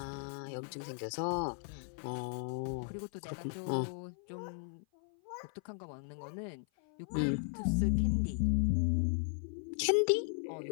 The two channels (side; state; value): right; silent; 53 dB below the other